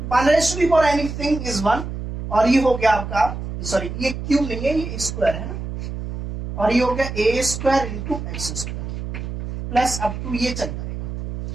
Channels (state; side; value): noise; right; hum, 7 dB below the sound